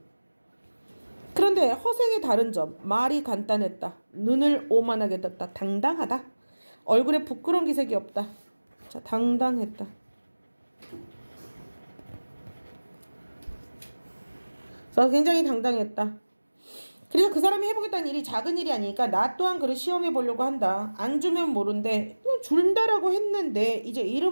그런데 허생의 다른 점. 말이 간단했다. 눈을 오만하게 떴다. 당당하다. 얼굴에 부끄러운 기색이 없다. 자, 당당했다. 그래서 굉장히 당당했다. 그래서 그 사람이 해보겠다는 일이 작은 일이 아니니까 나 또한 그를 시험해 보려고 한다. 안 주면 모른대. 준다라고 했는데 이제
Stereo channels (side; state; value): both; inverted; correlation -1.00